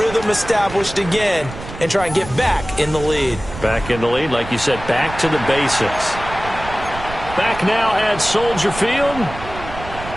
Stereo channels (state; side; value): noise; right; rumble, 12 dB below the sound